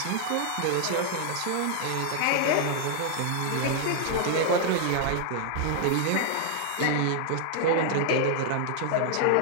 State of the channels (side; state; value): both; different; correlation 0.00